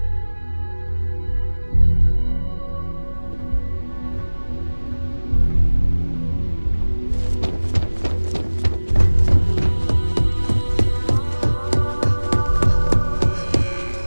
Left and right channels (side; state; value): both; inverted; correlation -1.00